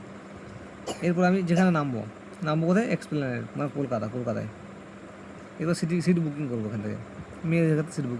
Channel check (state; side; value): identical; both; correlation 1.00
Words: এরপর আমি যেখানে নামবো কোথায় এক্সপ্লেনেড মানে কলকাতায়। এরপর সিট বুকিং করবো এখান থেকে, মেয়েদের ক্ষেত্রে সিট